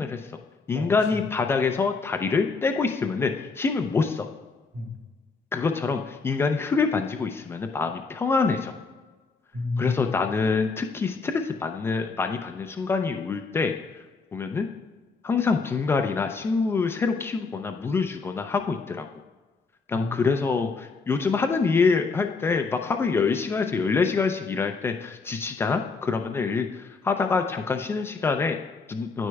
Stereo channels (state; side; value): quieter; right; 4.4 dB